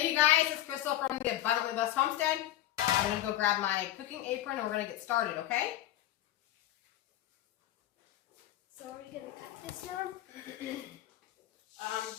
you guys, it's Crystal from the Abundantly Blessed Homestead. I'm going to go grab my cooking apron and we're going to get started, okay? So are we going to cut this one? Maybe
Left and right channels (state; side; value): quieter; right; 13.6 dB